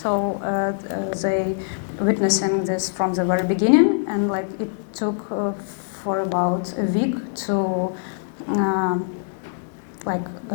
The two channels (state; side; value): silent; right; digital silence